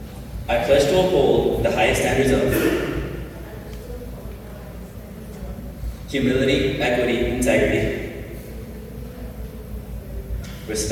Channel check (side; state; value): both; identical; correlation 1.00